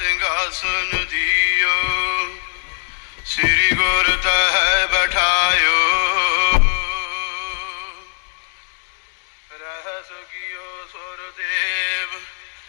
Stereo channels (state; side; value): silent; right; digital silence